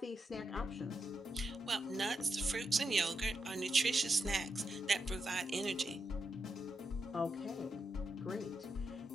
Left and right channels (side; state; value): both; normal; correlation 0.85